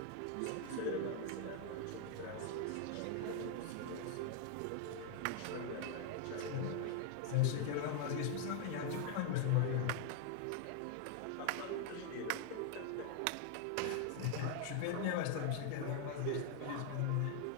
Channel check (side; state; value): both; different; correlation 0.00